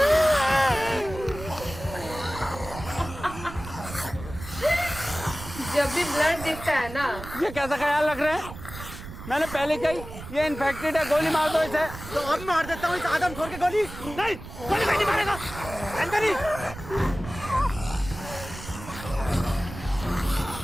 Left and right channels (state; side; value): noise; right; rumble, 12 dB below the sound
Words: ब्लड दिखता है ना। ये कैसा ख्याल रख रहे हैं? मैंने पहले कही ये इन्फेक्टेड है, गोली मार दो इसे। तो अब मार देता हूँ इस आदमखोर के गोली। नहीं, गोली नहीं मारेगा। अंदर ही।